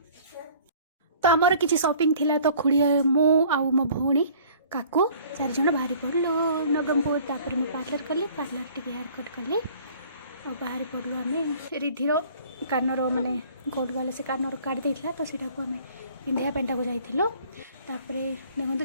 तो आमर किसी शॉपिंग थिला तो खुड़ी मो आउ मो भौणी काकू 4 जन बाहरी पड़लो नवरंगपुर तापर मैं पार्लर कली पार्लर टिके हेयर कट कली और बाहरी पड़लो आम रिधिर कानर माने गोल्ड वाले से कानर काट देइथिला तो सेटा को आम पिंधिया पेंटा को जाइथिलो तापरे देखो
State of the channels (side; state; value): both; inverted; correlation -0.52